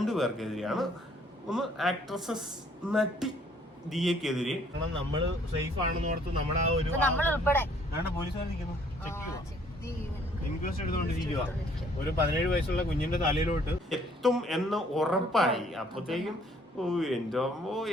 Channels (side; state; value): both; normal; correlation 0.61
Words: പേർക്കെതിരെയാണ്. ഒന്ന് ആക്ട്രസസ് നടി ദിയക്കെതിരെ. നമ്മള് സേഫ് ആണെന്ന് ഓർത്ത് നമ്മുടെ ആ ഒരു പോലീസുകാർ നിൽക്കുന്നു, ഇൻക്വസ്റ്റ് എടുത്തോണ്ടിരിക്കുക. ഒരു 17 വയസ്സുള്ള കുഞ്ഞിന്റെ തലയിലോട്ട് എത്തും എന്ന് ഉറപ്പായി. അപ്പത്തേക്കും എന്തോ